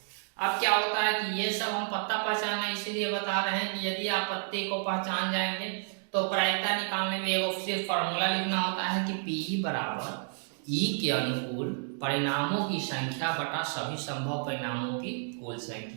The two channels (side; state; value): left; silent; 57 dB below the other